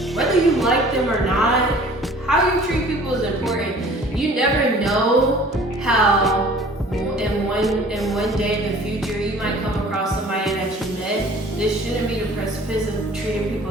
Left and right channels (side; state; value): both; normal; correlation 0.49